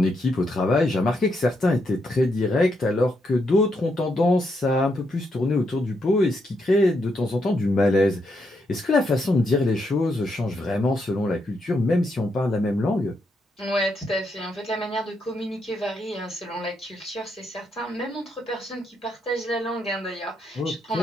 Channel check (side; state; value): both; normal; correlation 0.79